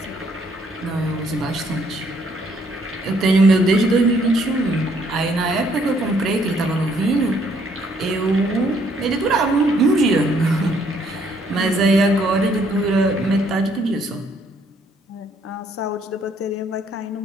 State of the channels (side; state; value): both; normal; correlation 0.67